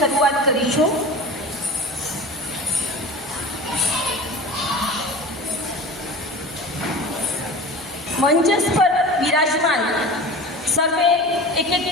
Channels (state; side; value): normal; both; correlation 0.35